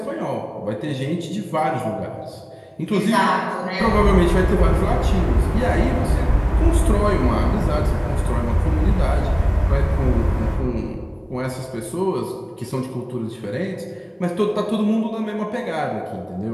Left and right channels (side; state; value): both; identical; correlation 1.00